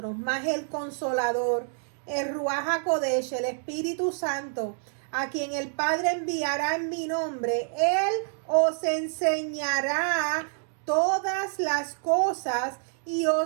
mas el Consolador, el Ruach HaKodesh, el Espíritu Santo, a quien el Padre enviará en mi nombre, Él os enseñará todas las cosas y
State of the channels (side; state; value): left; silent; digital silence